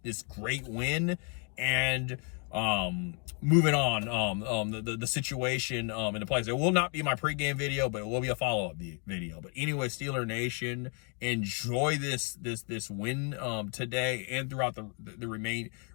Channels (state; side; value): quieter; right; 38.9 dB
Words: this great win. And moving on, the situation in the place. It will not be my pregame video, but it will be a follow-up video. But anyway, Steeler Nation, enjoy this win today and throughout the